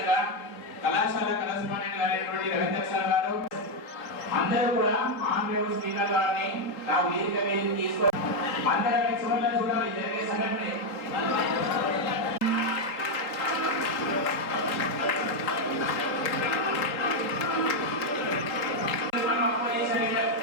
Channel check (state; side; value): late; right; 3.7 ms